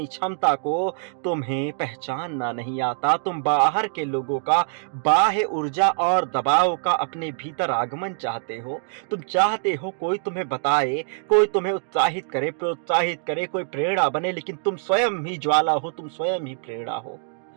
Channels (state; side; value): silent; left; digital silence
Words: क्षमता को तुम्हें पहचानना नहीं आता। तुम बाहर के लोगों का बाह्य ऊर्जा और दबाव का अपने भीतर आगमन चाहते हो। तुम चाहते हो कोई तुम्हें बताए, कोई तुम्हें उत्साहित करे, प्रोत्साहित करे, कोई प्रेरणा बने, लेकिन तुम स्वयं ही ज्वाला हो, तुम स्वयं ही प्रेरणा हो।